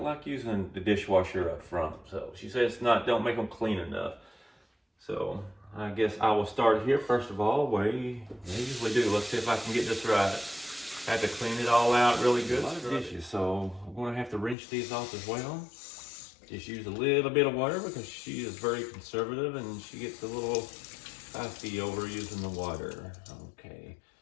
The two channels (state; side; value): drops out; right; at 14.6 s